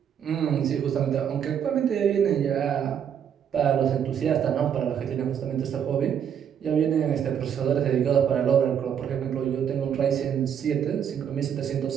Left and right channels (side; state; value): left; quieter; 8.5 dB